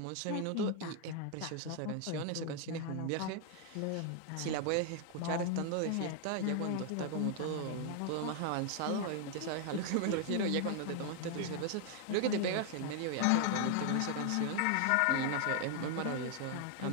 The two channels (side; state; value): both; different; correlation 0.00